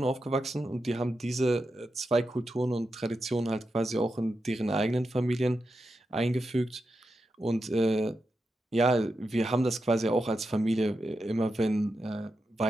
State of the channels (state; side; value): normal; both; correlation 0.88